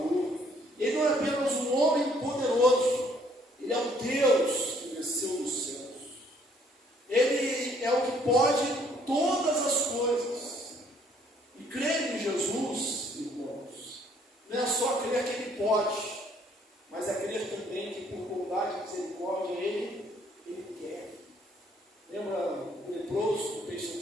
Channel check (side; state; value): both; normal; correlation 0.64